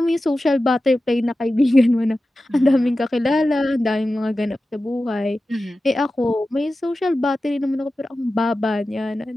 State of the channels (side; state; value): both; normal; correlation 0.94